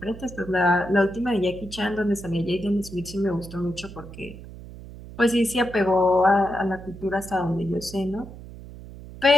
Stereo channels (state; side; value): noise; right; hum, 15 dB below the sound